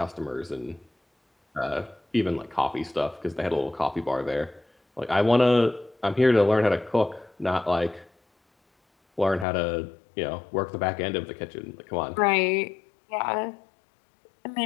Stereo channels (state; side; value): drops out; right; at 9.5 s